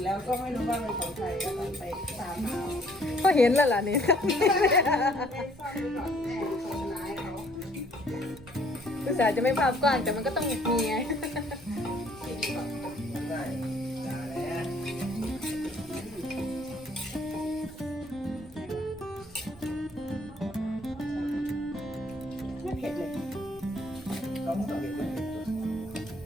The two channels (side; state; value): right; noise; rumble, 23 dB below the sound